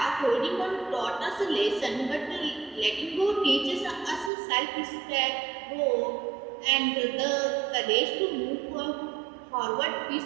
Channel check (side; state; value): left; drops out; at 4.3 s